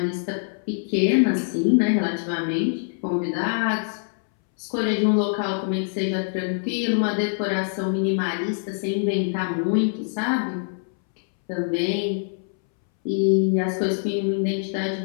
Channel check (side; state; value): right; silent; 63 dB below the other